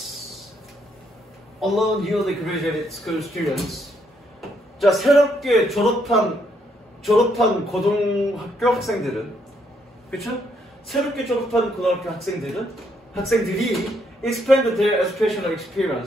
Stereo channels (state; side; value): normal; both; correlation 0.73